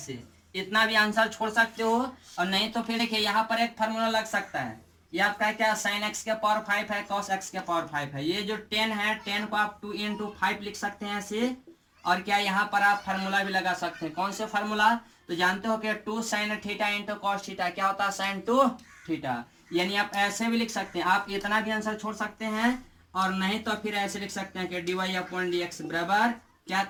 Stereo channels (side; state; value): both; identical; correlation 1.00